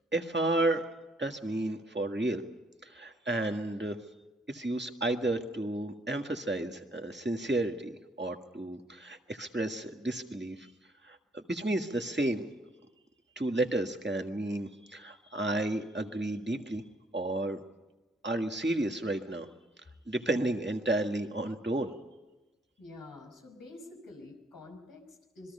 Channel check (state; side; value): normal; both; correlation 0.67